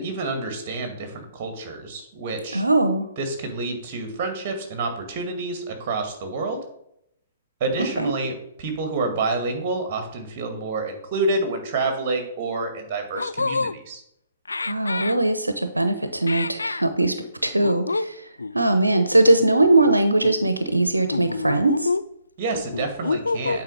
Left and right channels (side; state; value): both; inverted; correlation -0.75